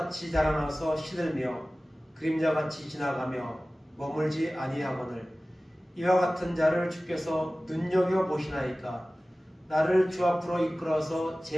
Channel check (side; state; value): both; normal; correlation 0.97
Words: 자라나서 시들며 그림자같이 지나가며 머물지 아니하거늘 이와 같은 자를 주께서 눈여겨보시나이까? 나를 주 앞으로 이끌어서